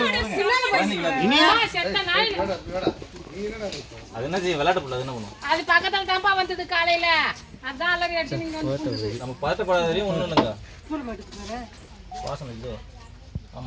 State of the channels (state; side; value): identical; both; correlation 1.00